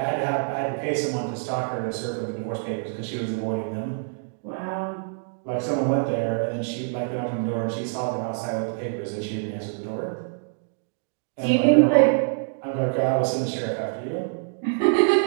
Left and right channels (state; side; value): silent; left; digital silence